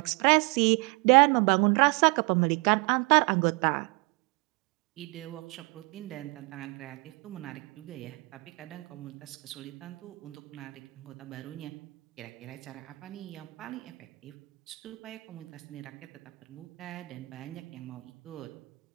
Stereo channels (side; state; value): left; quieter; 27.9 dB